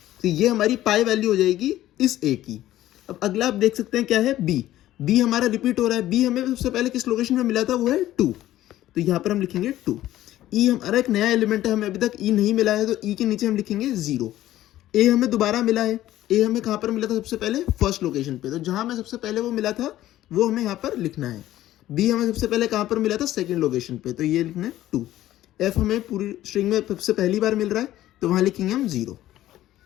तो ये हमारी पाई वैल्यू हो जाएगी इस ए की। अब अगला आप देख सकते हैं क्या है, बी। बी हमारा रिपीट हो रहा है, बी हमें सबसे पहले किस लोकेशन पे मिला था, वो है 2। तो यहां पर हम लिखेंगे 2। ई हमारा एक नया एलिमेंट है, हमें अभी तक ई नहीं मिला है, तो ई के नीचे हम लिखेंगे 0। ए हमें दोबारा मिला है, ए हमें कहां पर मिला था सबसे पहले, फर्स्ट लोकेशन पे, तो जहां हमें सबसे पहले वो मिला था वो हमें यहाँ पर लिखना है। बी हमें सबसे पहले कहां पर मिला था, सेकंड लोकेशन पे, तो ये लिखना है 2। एफ हमें पूरी स्ट्रिंग में सबसे पहली बार मिल रहा है तो वहाँ लिखेंगे हम 0।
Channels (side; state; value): right; quieter; 14.1 dB